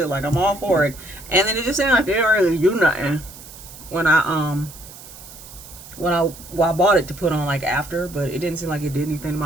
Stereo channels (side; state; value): right; noise; hiss, 17 dB below the sound